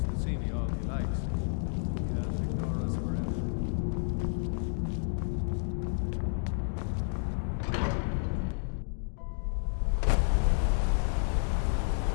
to see me all he likes. He can't ignore us forever.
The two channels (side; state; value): right; silent; digital silence